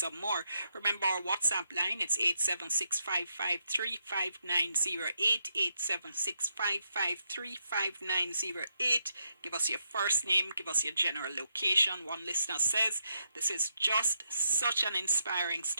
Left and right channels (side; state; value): both; inverted; correlation -0.81